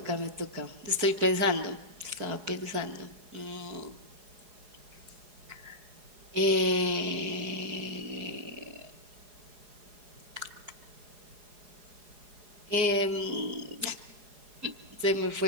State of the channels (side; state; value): left; late; 4.8 ms